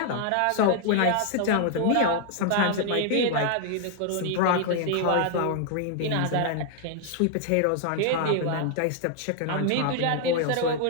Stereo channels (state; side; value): different; both; correlation 0.00